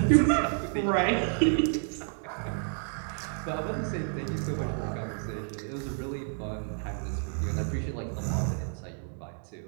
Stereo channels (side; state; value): left; silent; 56 dB below the other